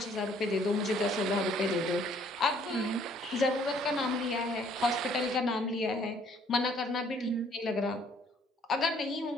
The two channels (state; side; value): normal; both; correlation 0.61